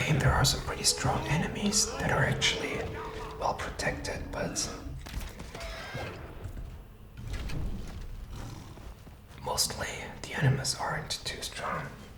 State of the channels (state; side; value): identical; both; correlation 1.00